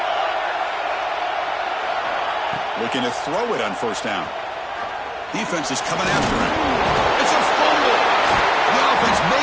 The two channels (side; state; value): both; identical; correlation 1.00